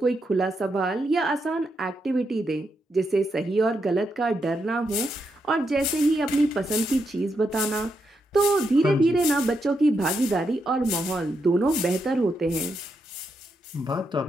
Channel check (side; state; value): both; normal; correlation 0.82